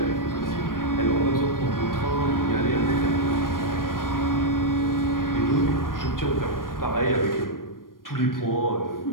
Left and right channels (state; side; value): late; right; 0.91 ms